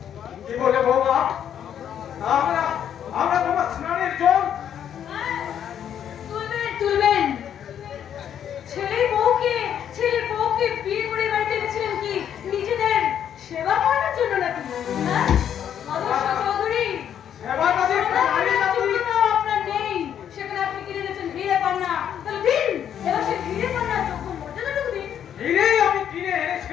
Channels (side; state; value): right; quieter; 9.4 dB